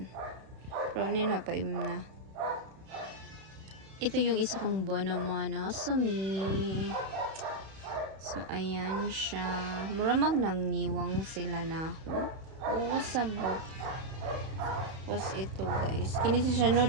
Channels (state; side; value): late; left; 31 ms